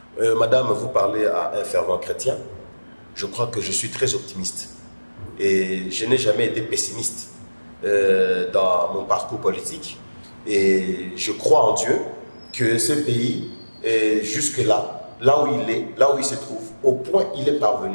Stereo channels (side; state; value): both; inverted; correlation -1.00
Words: Madame, vous parlez à un fervent chrétien. Je crois que je suis très optimiste. Et je n'ai jamais été pessimiste dans mon parcours politique. Et je crois en Dieu que ce pays est jusque-là, là où il est, là où il se trouve, au point où il est